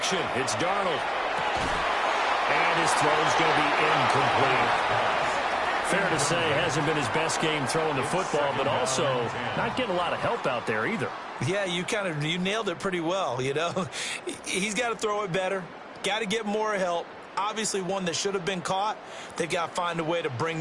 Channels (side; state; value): both; identical; correlation 1.00